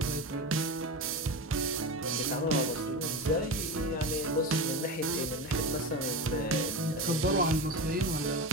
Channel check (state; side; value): normal; both; correlation 0.24